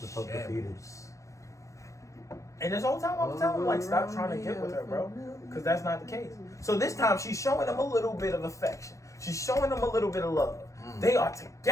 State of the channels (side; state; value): right; late; 0.15 ms